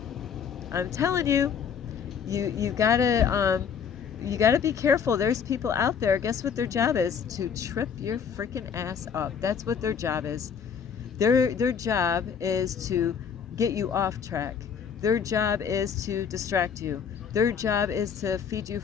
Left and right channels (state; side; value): quieter; right; 7.1 dB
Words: I'm telling you, you gotta be careful. There's people out there. Guess what their job is? To trip your freaking ass up. That's what their job is. Their job is to get you off track. Their job is to distract you. Their job is to feed you